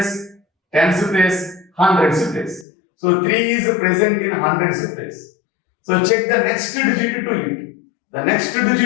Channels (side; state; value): right; drops out; at 2.7 s